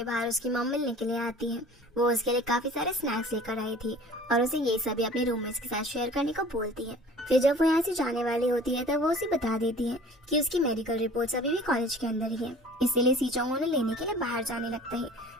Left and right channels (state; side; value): normal; both; correlation 0.46